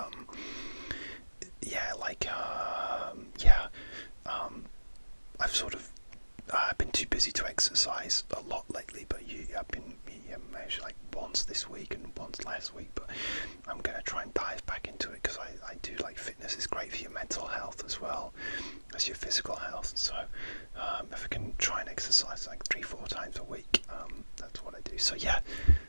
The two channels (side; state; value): both; inverted; correlation -1.00